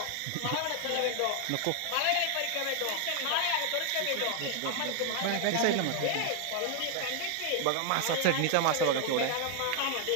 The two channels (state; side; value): different; both; correlation 0.00